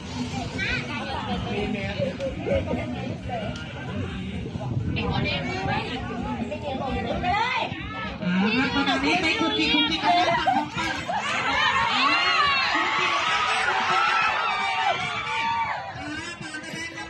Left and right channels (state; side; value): identical; both; correlation 1.00